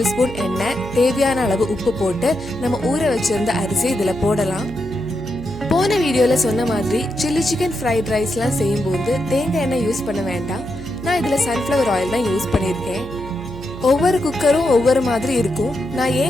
ஸ்பூன் எண்ணெய், தேவையான அளவு உப்பு போட்டு நம்ம ஊற வச்சிருந்த அரிசி இதுல போடலாம். போன வீடியோல சொன்ன மாதிரி சில்லி சிக்கன் ஃப்ரைட் ரைஸ்லாம் செய்யும்போது தேங்காய் எண்ணெய் யூஸ் பண்ண வேண்டாம். நான் இதுல சன்ஃப்ளவர் ஆயில் தான் யூஸ் பண்ணியிருக்கேன். ஒவ்வொரு குக்கரும் ஒவ்வொரு மாதிரி இருக்கும். நான்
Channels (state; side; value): noise; right; hum, 13 dB below the sound